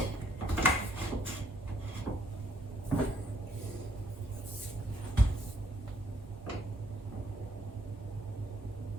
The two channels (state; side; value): normal; both; correlation 0.68